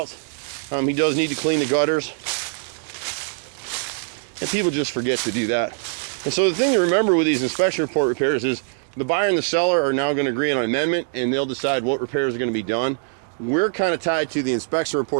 He does need to clean the gutters. And people just forget to do that. And so the thing to remember with these inspection report repairs is the buyer and the seller are now going to agree on an amendment, and they'll decide what repairs are going to be done. We're kind of tied to the inspection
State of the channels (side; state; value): left; silent; digital silence